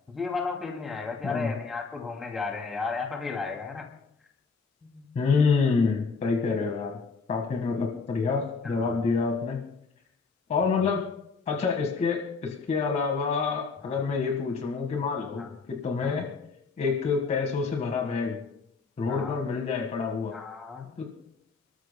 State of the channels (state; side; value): quieter; right; 4.6 dB